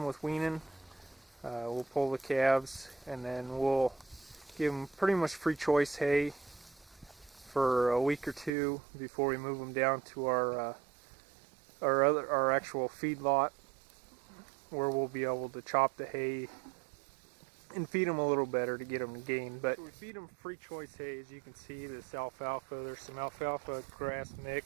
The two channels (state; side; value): drops out; left; at 8.5 s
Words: with weaning, we'll pull the calves and then we'll give them pretty much free choice hay for a week or two before we move them down to our actual feed lot, where we'll be able to chop the hay and feed them a little better to get them to gain. But we feed them free choice hay. As you can see, this alfalfa, there's some alfalfa grass